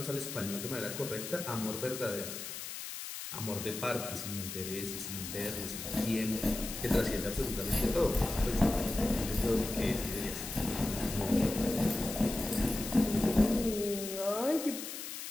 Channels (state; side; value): noise; left; hiss, 8 dB below the sound